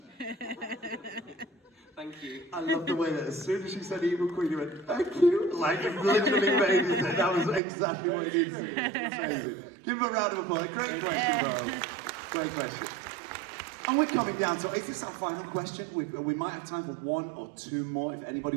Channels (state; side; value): drops out; left; at 7.6 s